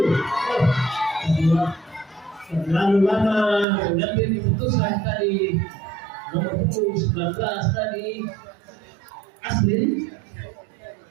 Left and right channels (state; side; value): drops out; left; at 3.7 s